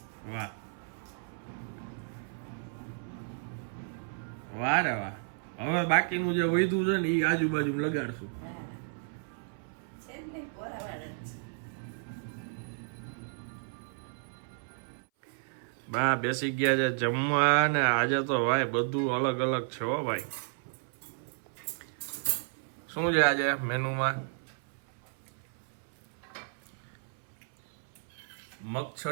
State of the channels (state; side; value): silent; left; 56 dB below the other